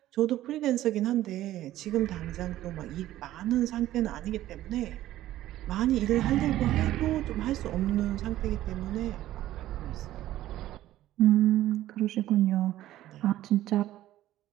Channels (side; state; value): left; quieter; 14.1 dB